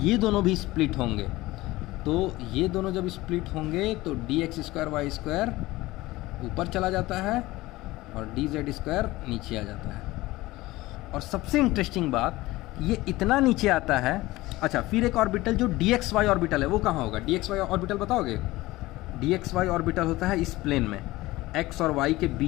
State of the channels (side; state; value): right; quieter; 18.8 dB